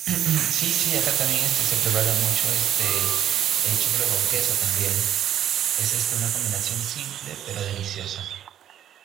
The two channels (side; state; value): left; quieter; 10.8 dB